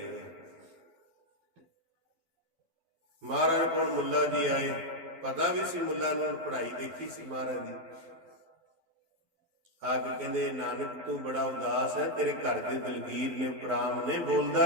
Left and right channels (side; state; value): left; late; 12 ms